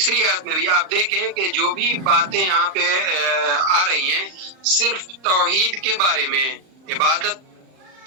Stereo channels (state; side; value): late; left; 39 ms